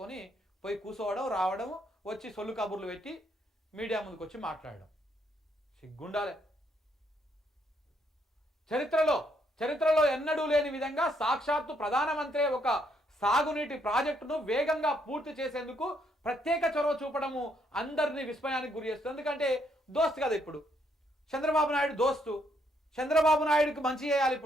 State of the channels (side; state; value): both; normal; correlation 0.73